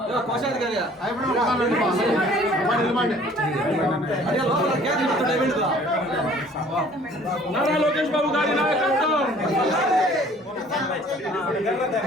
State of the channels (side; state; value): both; normal; correlation 0.54